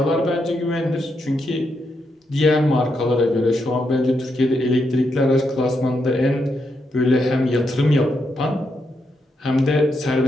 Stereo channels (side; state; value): both; normal; correlation 0.81